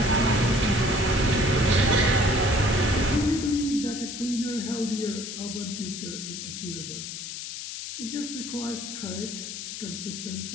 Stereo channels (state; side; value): noise; left; hiss, 8 dB below the sound